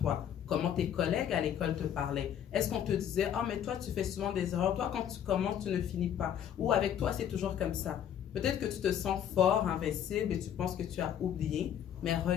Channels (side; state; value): right; quieter; 9.6 dB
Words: Comment tes collègues à l'école te parlaient? Est-ce qu'on te disait, ah, mais toi, tu fais souvent des erreurs. Toi, quand tu commences, tu ne finis pas. Ou avec toi, c'est toujours comme ça. Peut-être que tu te sens fort, invincible et tu penses que tu as oublié. Mais